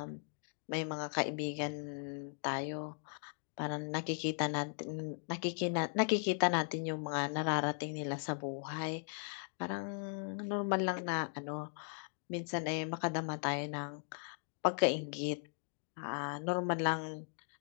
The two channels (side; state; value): right; silent; 52 dB below the other